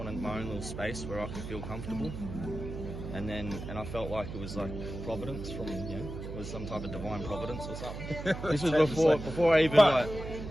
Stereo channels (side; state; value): right; noise; hum, 8 dB below the sound